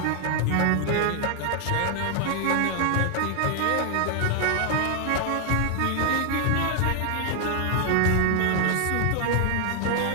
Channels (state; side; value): different; both; correlation 0.00